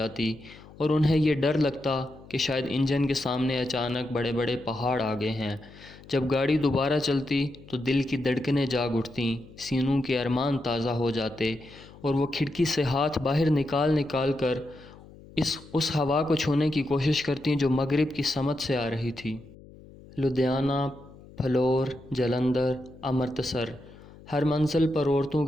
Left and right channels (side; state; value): left; noise; hum, 21 dB below the sound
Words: اور انہیں یہ ڈر لگتا کہ شاید انجن کے سامنے اچانک بڑے بڑے پہاڑ آ گئے ہیں۔ جب گاڑی دوبارہ چلتی تو دل کی دھڑکنیں جاگ اٹھتیں، سینوں کے ارمان تازہ ہو جاتے اور وہ کھڑکی سے ہاتھ باہر نکال کر اس ہوا کو چھونے کی کوشش کرتی جو مغرب کی سمت سے آ رہی تھی۔ لدھیانہ، پھلور، جلندھر، امرتسر، ہر منزل پر عورتوں